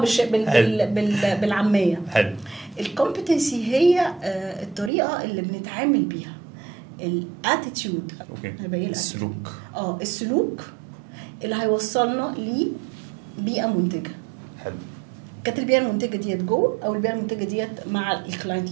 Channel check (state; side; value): drops out; left; at 4.9 s